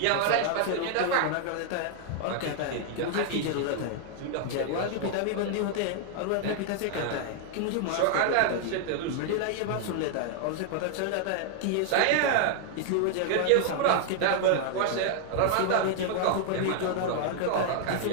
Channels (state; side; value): different; both; correlation 0.00